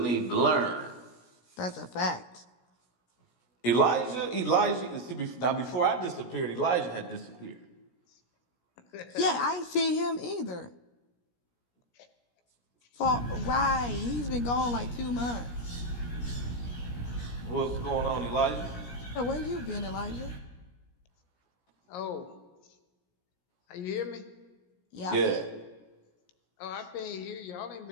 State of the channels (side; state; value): right; late; 17 ms